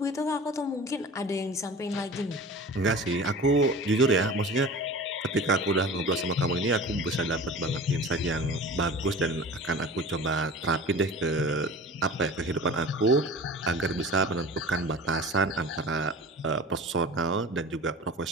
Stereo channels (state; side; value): normal; both; correlation 0.38